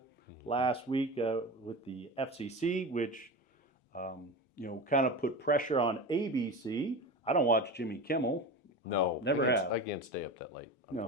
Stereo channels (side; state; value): both; normal; correlation 0.27